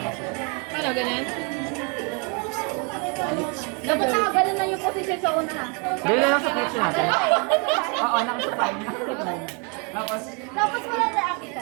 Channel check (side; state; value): left; quieter; 34.6 dB